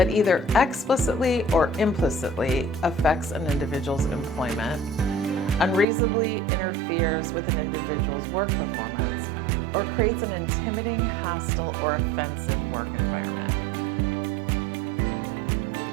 either explicitly or implicitly affects an individual's employment, unreasonably interferes with an individual's work performance, or creates an intimidating, hostile, or offensive work environment.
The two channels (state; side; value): drops out; left; at 5.9 s